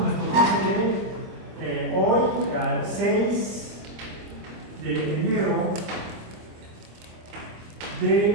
curso de hoy, al 6 de enero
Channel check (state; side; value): late; left; 25 ms